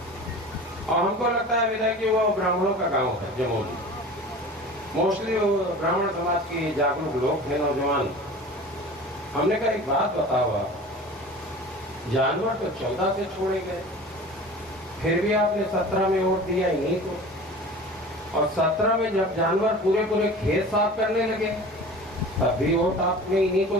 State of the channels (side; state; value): both; normal; correlation 0.39